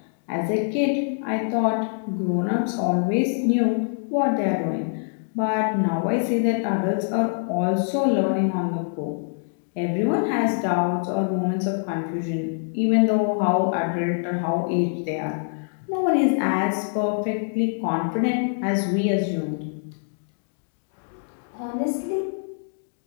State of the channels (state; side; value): silent; right; digital silence